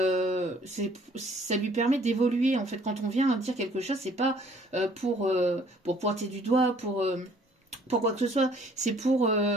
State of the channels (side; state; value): both; normal; correlation 0.59